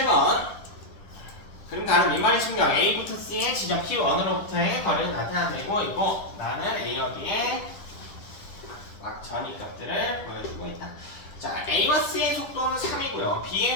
그럼 나는 민말의 측정 A부터 C의 지점 P1으로부터의 거리를 나타내고 있고 나는 A와 B의 전위 값들을 보여주고 있다. 자, A와 C의 속도는 3이고요.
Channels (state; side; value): late; right; 10 ms